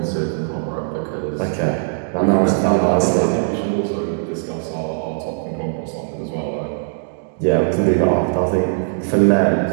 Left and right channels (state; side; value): silent; left; digital silence